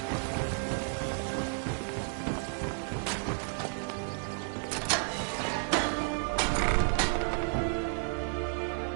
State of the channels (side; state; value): left; silent; 55 dB below the other